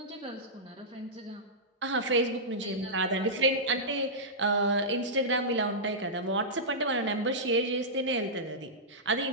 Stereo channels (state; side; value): normal; both; correlation -0.13